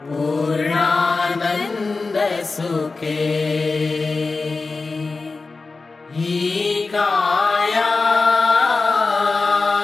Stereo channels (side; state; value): right; quieter; 3.9 dB